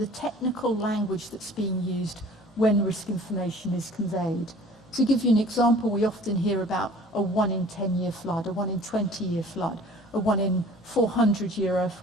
the technical language that's being used when risk information is conveyed. To give you an example, we often hear about a 1 in 10-year flood, a 1 in 20-year flood, a 1 in 400-year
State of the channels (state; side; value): normal; both; correlation 0.48